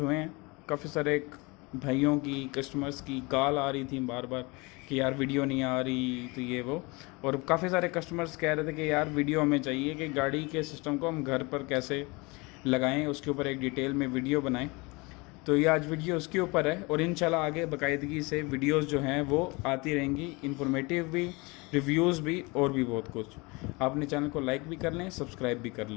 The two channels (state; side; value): quieter; right; 26.3 dB